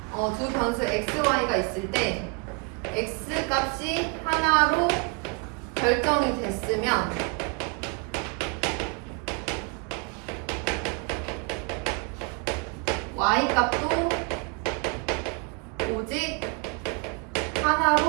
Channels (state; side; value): quieter; left; 33.7 dB